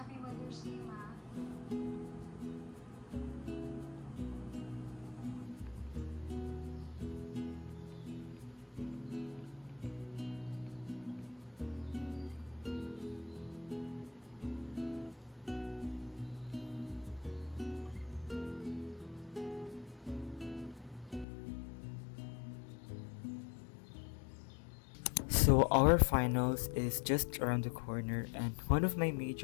Mother's Day, Ma. So our finals is just around the corner, and one of my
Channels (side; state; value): right; drops out; at 21.2 s